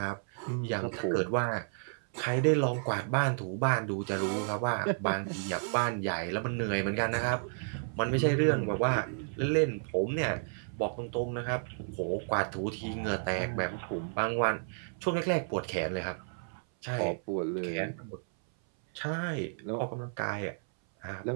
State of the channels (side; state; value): left; silent; 57 dB below the other